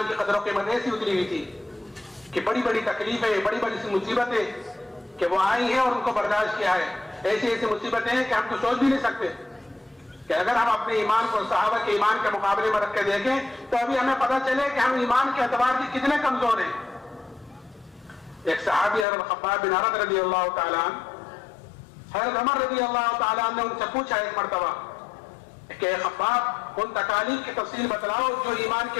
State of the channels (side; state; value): right; drops out; at 19.1 s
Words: کی قدر و قیمت ایسی اتری ہوئی تھی کہ بڑی بڑی تکلیفیں، بڑی بڑی سی مصیبتیں کہ وہ آئی ہیں اور ان کو برداشت کیا ہے. ایسی ایسی مصیبتیں ہیں کہ ہم تو سوچ بھی نہیں سکتے کہ اگر ہم اپنے ایمان کو صحابہ کے ایمان کے مقابلے میں رکھ کے دیکھیں تو ابھی ہمیں پتہ چلے کہ ہم ایمان کے اعتبار سے کتنے کمزور ہیں. ایک صحابی حضرت خباب بن عرد رضی اللہ تعالیٰ عنہ، حضرت عمر رضی اللہ تعالیٰ عنہ نے ان سے پوچھا ایک مرتبہ کہ خباب ان تکالیف کی تفصیل بتلاؤ جو ایمان کی